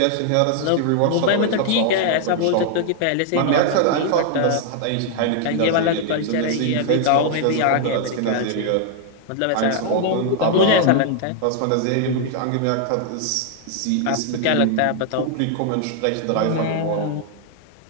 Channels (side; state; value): both; different; correlation 0.00